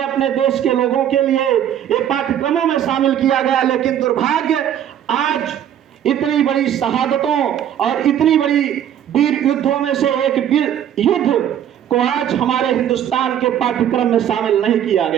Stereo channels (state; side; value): quieter; left; 10.2 dB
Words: अपने देश के लोगों के लिए ये पाठ्यक्रमों में शामिल किया गया, लेकिन दुर्भाग्य आज इतनी बड़ी शहादतों और इतनी बड़ी वीर युद्धों में से एक वीर युद्ध को आज हमारे हिंदुस्तान के पाठ्यक्रम में शामिल नहीं किया